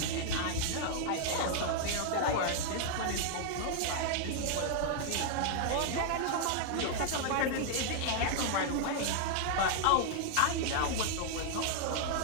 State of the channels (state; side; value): different; both; correlation -0.01